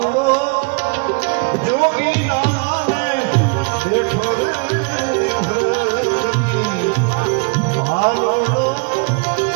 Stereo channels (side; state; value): left; quieter; 34.7 dB